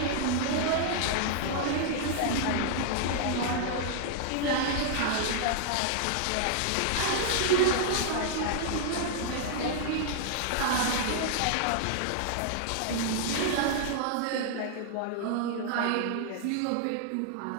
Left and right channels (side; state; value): both; different; correlation -0.01